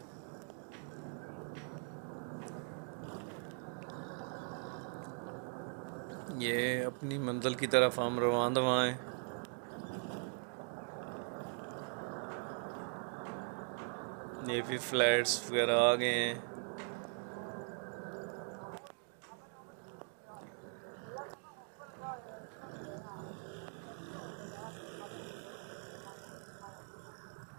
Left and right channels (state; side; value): silent; left; 50 dB below the other